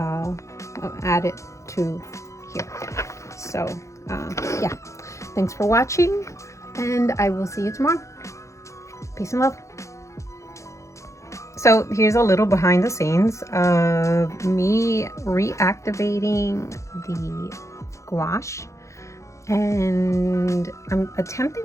add it to here. So yeah, thanks for watching, and I will see you tomorrow. Peace and love. So here's a little behind the scenes of me reactivating the gouache, and I'm attempting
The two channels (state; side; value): late; right; 0.15 ms